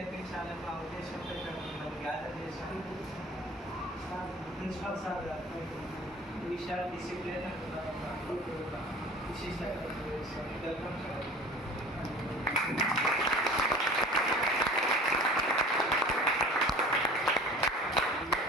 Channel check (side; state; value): both; normal; correlation 0.43